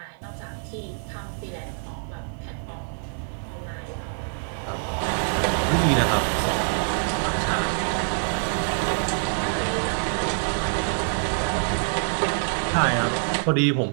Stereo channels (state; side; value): silent; left; 61 dB below the other